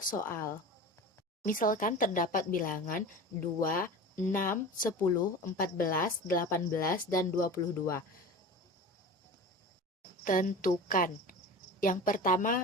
soal. Misalkan terdapat bilangan 2, 6, 10, 14, 18, dan 22. Tentukan. Yang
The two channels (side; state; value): both; normal; correlation 0.33